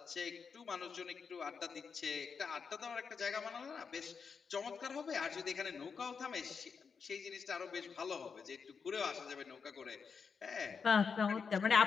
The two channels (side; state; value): right; quieter; 5.8 dB